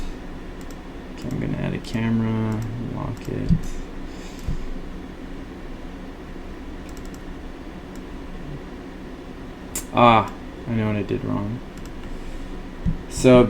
Okay, I'm going to add a camera. Lock it. Ah, I know what I did wrong. So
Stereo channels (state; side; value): identical; both; correlation 1.00